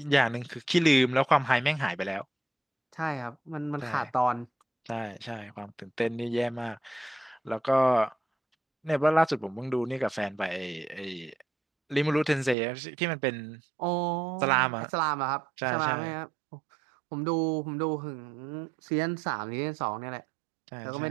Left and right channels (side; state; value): left; drops out; at 12.6 s